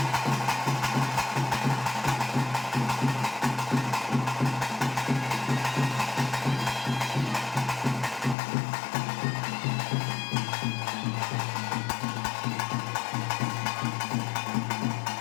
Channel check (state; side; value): drops out; right; at 8.3 s